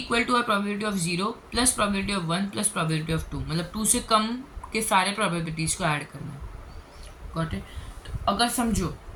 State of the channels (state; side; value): identical; both; correlation 1.00